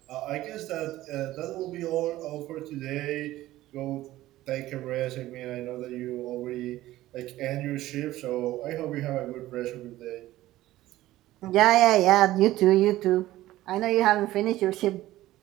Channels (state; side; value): quieter; left; 15.7 dB